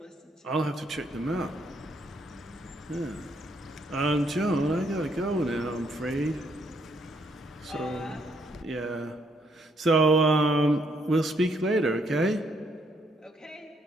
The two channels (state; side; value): normal; both; correlation 0.72